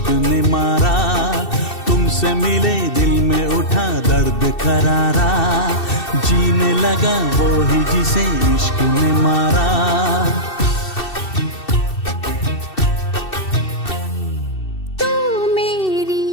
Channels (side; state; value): right; late; 2.7 ms